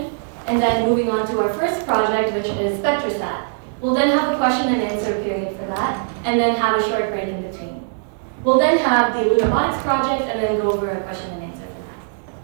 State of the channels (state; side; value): silent; left; digital silence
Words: and then moving on to our first project, which is SpectraSat. We'll then have a question and answer period for that, and then have a short break in between. We'll then have the Lunabotics project, and then go over a question and answer for